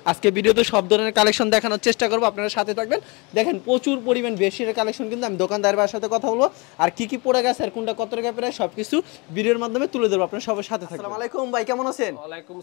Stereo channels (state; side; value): quieter; right; 28.3 dB